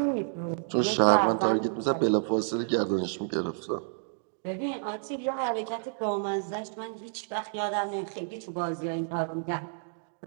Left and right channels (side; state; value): left; silent; digital silence